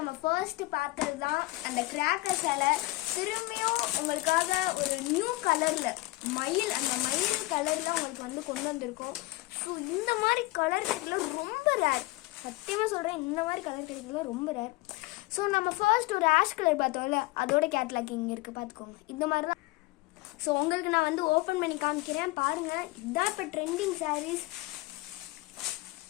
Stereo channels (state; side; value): quieter; right; 20.7 dB